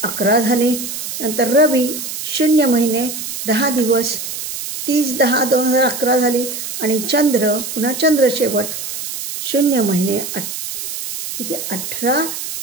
झाले. नंतर रवी 0 महिने 10 दिवस, 30/10/2011 झाली. आणि चंद्र, पुन्हा चंद्र शेवट 0 महिने 18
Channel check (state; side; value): noise; right; hiss, 6 dB below the sound